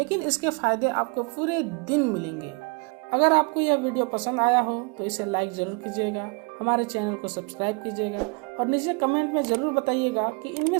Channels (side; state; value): left; quieter; 30.9 dB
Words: इसके फायदे आपको पूरे दिन मिलेंगे। अगर आपको यह वीडियो पसंद आया हो तो इसे लाइक जरूर कीजिएगा, हमारे चैनल को सब्सक्राइब कीजिएगा और नीचे कमेंट में जरूर बताइएगा कि इनमें